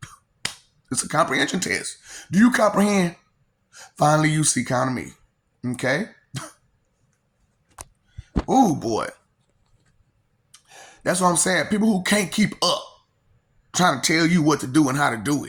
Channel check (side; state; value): both; identical; correlation 1.00